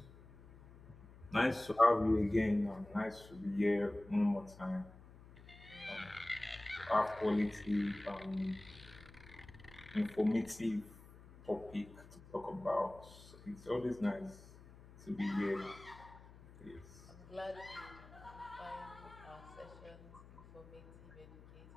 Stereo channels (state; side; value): noise; left; hum, 20 dB below the sound